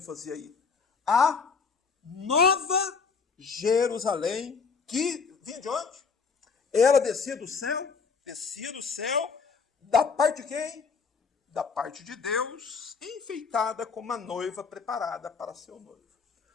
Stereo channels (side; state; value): right; quieter; 5.3 dB